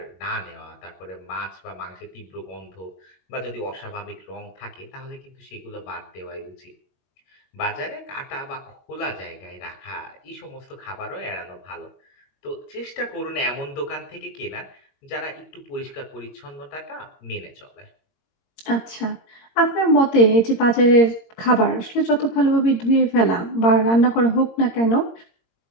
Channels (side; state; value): right; late; 22 ms